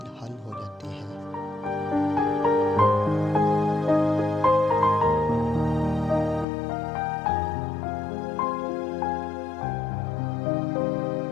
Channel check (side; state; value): right; drops out; at 6.5 s